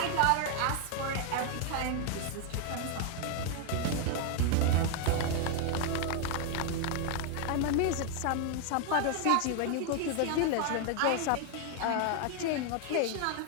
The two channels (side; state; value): both; different; correlation 0.00